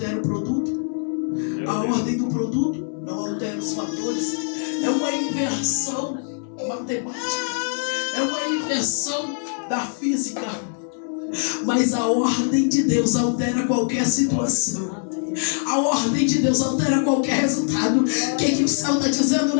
o produto. A ordem do produto não altera os fatores. É uma inversão matemática. É uma inversão da física. Mas a ordem de Deus altera qualquer situação. A ordem de Deus altera qualquer resultado. O que o céu está dizendo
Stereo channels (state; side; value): silent; right; 63 dB below the other